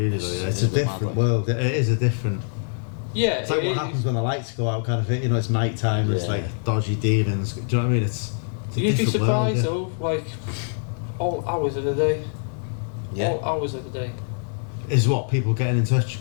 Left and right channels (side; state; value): right; silent; 63 dB below the other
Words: Though, yeah. It's a a bit different mad, like. world. It is a different. Yeah, It's like what happens when the lights go out, kind of thing. You know, it's night time. It's Yeah. like dodgy demons. Do you know what I mean? It's a You'd be different world, surprised yeah. though, like all hours of the day. Yeah. All hours of the day. Is what people getting in touch